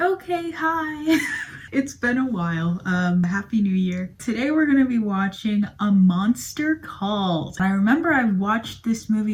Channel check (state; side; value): identical; both; correlation 1.00